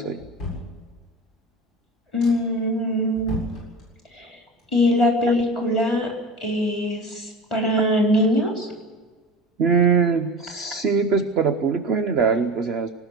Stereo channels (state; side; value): normal; both; correlation 0.32